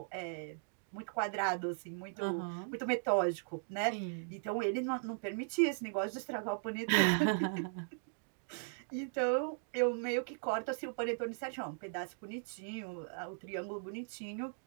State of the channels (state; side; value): silent; left; digital silence